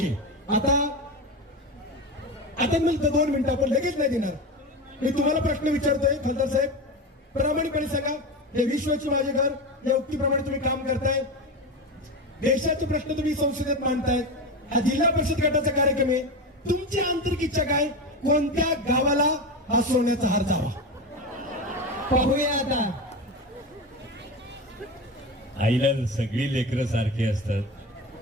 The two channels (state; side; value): normal; both; correlation 0.21